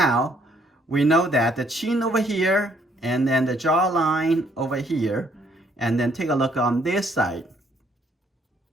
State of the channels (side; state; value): both; normal; correlation 0.67